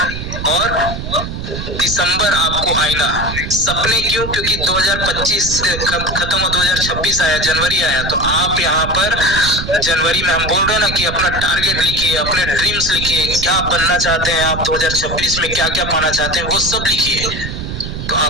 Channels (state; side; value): noise; right; rumble, 6 dB below the sound